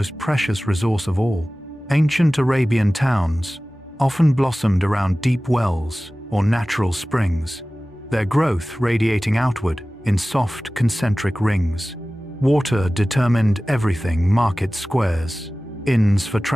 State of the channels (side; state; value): both; normal; correlation 0.97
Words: precious resource of all. Ancient Arabian towns often blossomed around deep wells or natural springs, their growth radiating outward in soft concentric rings. Water determined everything: market squares, inns for